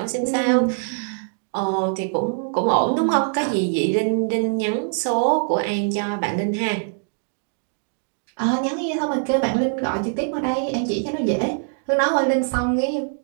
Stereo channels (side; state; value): left; silent; 63 dB below the other